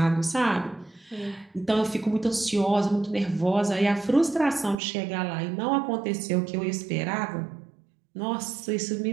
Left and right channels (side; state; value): left; drops out; at 4.8 s